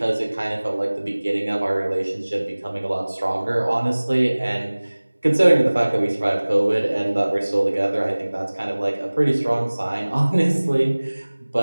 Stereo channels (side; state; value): both; inverted; correlation -1.00